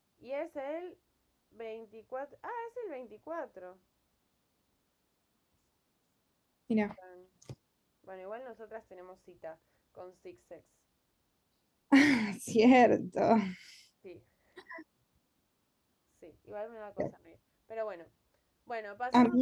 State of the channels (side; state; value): both; identical; correlation 1.00